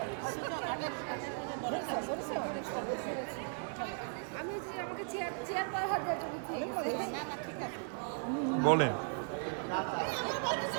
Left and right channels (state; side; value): silent; left; 53 dB below the other